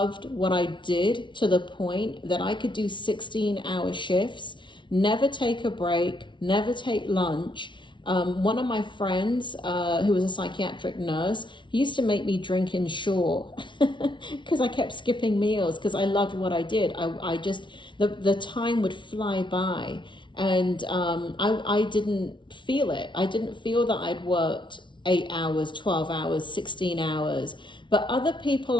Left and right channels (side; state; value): right; late; 0.24 ms